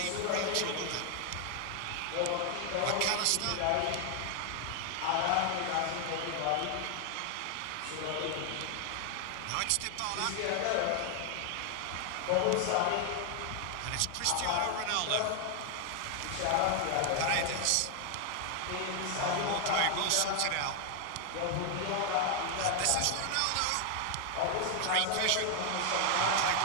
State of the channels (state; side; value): different; both; correlation 0.00